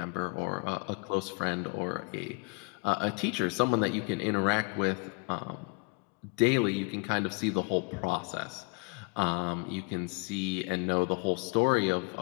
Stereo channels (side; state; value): right; quieter; 31.3 dB